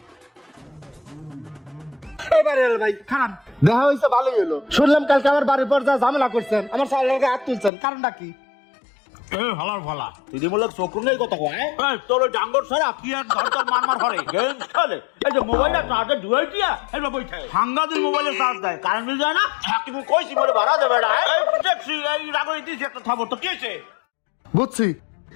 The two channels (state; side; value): drops out; right; at 7.7 s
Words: ভাই খান দেখা হয়েছে, ভালোই হলো। শুনলাম কালকে আমার বাড়ির পর যা ঝামেলা করছেন, আমার সালের হাত তুলছেন, কারণটা কি? হালার ভালা তুই বলে চোখ নেই কথা কয়। তোর ওই ডাঙ্গর ছাড়া কি আর ধর তোর মার হরে গেম খেলে। এই যে মোবাইলটা চার্জে ঢুয়াই দিয়া এবার বইছে সাংঘাতিক মোবাইলে চার্জ দেয়, কারেন্ট বিল যায় না। কিন্তু কইছি বলে ভাড়া দেবে না। এই দেখছি এই রাগই দিছি একটা থাবর তো কিছে। বুঝছি,